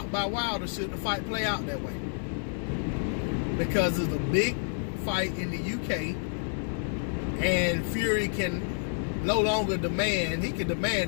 by Wilder should the fight play out that way. Because it's a big fight in the UK, and Fury can no longer demand, he can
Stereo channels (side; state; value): right; silent; digital silence